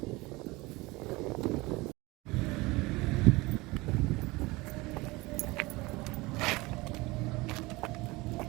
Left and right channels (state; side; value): quieter; left; 22.5 dB